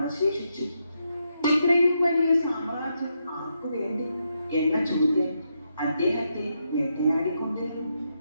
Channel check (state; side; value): inverted; both; correlation -0.82